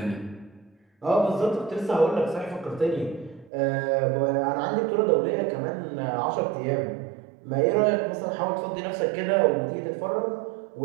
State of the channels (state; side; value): drops out; left; at 3.5 s